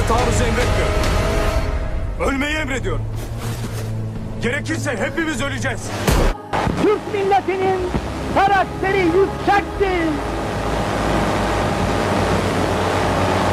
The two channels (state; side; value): identical; both; correlation 1.00